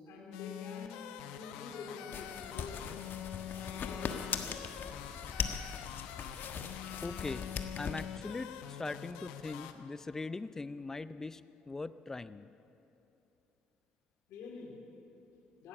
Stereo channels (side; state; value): right; quieter; 5.5 dB